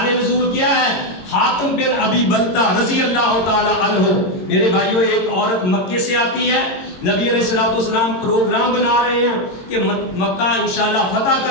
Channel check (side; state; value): right; late; 22 ms